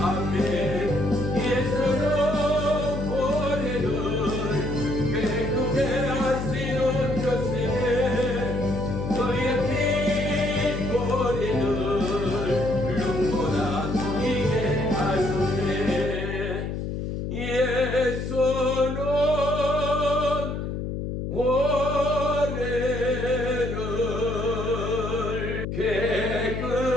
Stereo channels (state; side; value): noise; left; hum, 4 dB below the sound